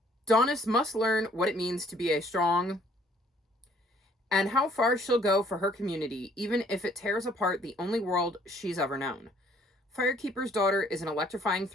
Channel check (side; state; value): both; normal; correlation 0.61